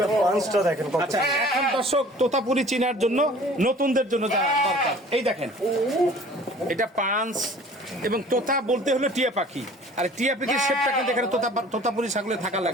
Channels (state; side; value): normal; both; correlation 0.48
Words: পাঁচটা দেখেন কত। আচ্ছা, এখন দর্শক তোতাপুরি চিনার জন্য নতুনদের জন্য যা দরকার, এই দেখেন, এটা পাঁচ এবং তোতা বলতে হলো টিয়া পাখি। আর টিয়া পিকের শেপটা কিন্তু এখানে তোতাপুরি ছাগলে থাকা